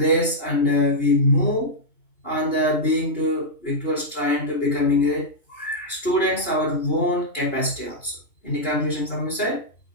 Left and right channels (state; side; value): late; right; 2.8 ms